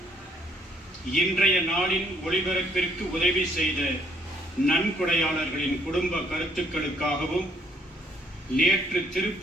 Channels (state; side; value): normal; both; correlation 0.66